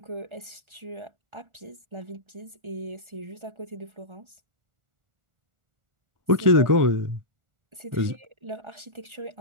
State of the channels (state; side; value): late; left; 1.3 ms